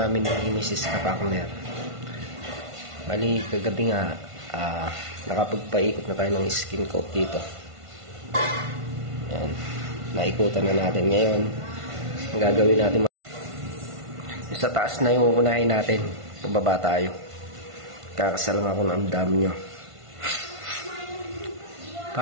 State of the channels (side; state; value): left; late; 1.5 ms